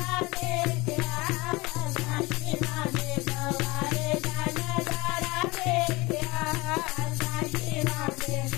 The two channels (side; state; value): right; quieter; 23.1 dB